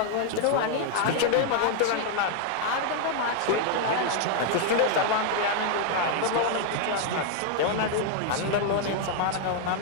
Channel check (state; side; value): different; both; correlation 0.00